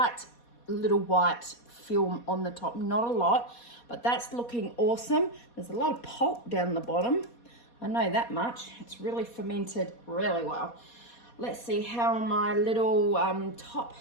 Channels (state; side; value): late; right; 4.2 ms